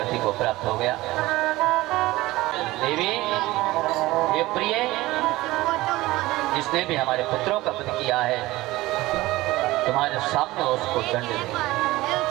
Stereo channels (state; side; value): quieter; left; 18.6 dB